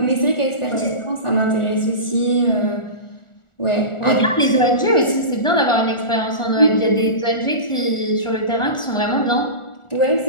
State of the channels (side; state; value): right; late; 1.4 ms